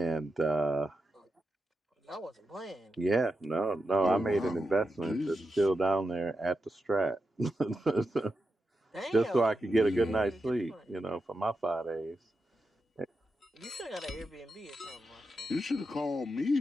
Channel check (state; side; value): normal; both; correlation 0.88